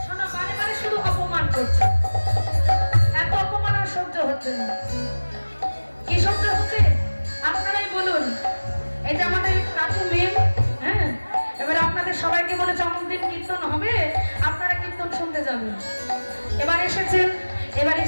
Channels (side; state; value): both; inverted; correlation -1.00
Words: সবাইকে বলেছে অমুক দিন কীর্তন হবে, আপনারা কীর্তন শুনতে যাবেন। এবার এসেছেন, এবার